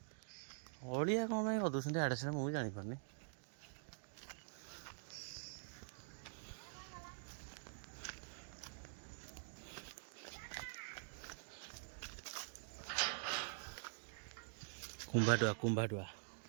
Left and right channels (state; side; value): silent; left; digital silence